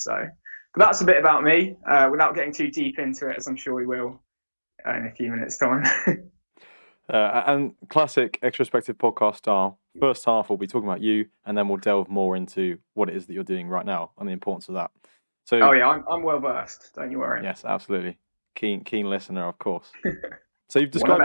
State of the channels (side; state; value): both; inverted; correlation -1.00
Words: But that's a bit about me, without getting too deep into it, as I'm sure we will in a few minutes' time. And classic Extrospective podcast style, first half we'll be talking about you, and then we'll delve more into what it is that you're doing right now and the importance of that. So, oh yeah, I'm well versed, don't you worry. Yes, absolutely. Keen listener, of course. So you've described